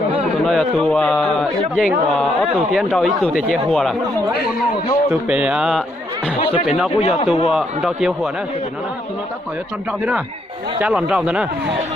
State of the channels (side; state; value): both; normal; correlation 0.74